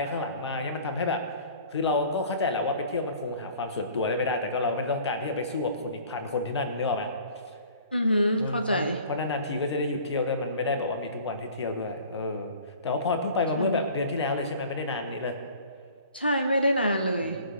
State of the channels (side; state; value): both; inverted; correlation -0.48